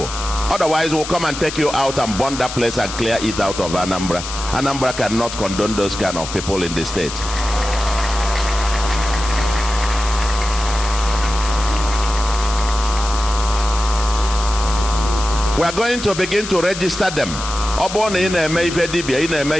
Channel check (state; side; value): noise; left; hiss, 9 dB below the sound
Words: Otherwise, we'll come and take you out and burn that place and clear it out of Anambra. Anambra cannot condone those kind of people in the state. We are going to begin to register them. We are